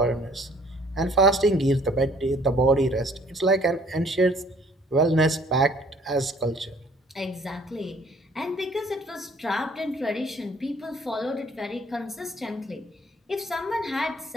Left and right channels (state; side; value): normal; both; correlation 0.58